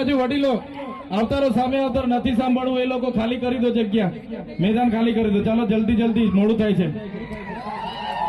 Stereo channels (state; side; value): identical; both; correlation 1.00